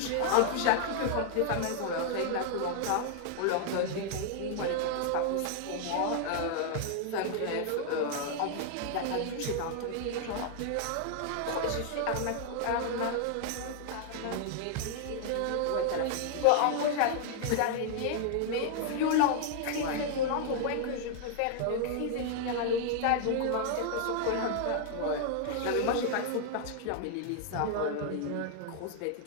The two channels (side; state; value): both; different; correlation 0.00